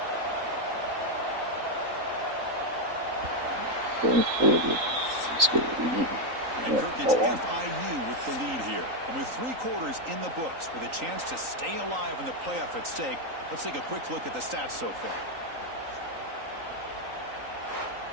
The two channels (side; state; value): left; late; 3.9 ms